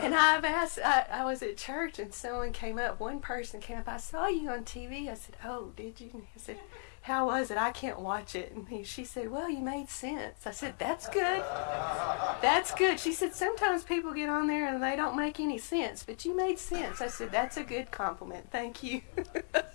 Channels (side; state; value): right; silent; 55 dB below the other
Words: I was at church, and one person came up, I saw you on TV. I said, oh, did you? I said, how was it? I can't watch it. And she said, well, you made sense. I said, that's good. That's good. She said, sometimes people get on there and they don't make any sense, but you made sense. I said, that's a good compliment. Thank you.